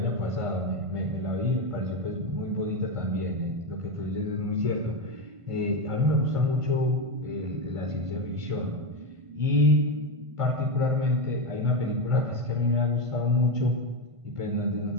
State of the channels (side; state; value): left; late; 1.5 ms